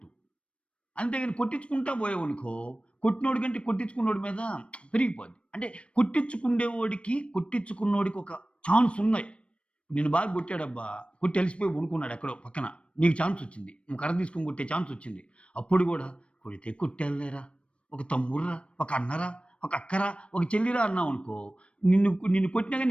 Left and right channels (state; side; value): late; right; 0.060 ms